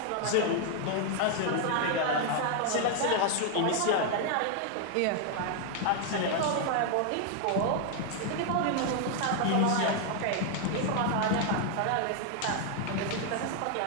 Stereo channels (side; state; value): both; different; correlation 0.00